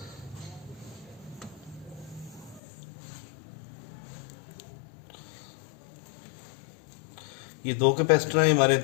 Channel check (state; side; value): drops out; right; at 2.6 s